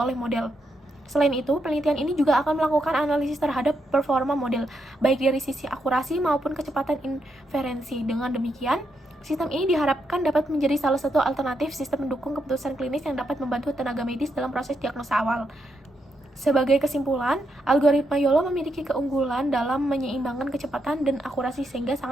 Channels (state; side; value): normal; both; correlation 0.81